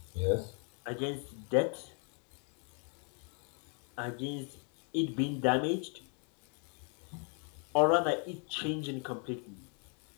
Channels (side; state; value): right; quieter; 39.3 dB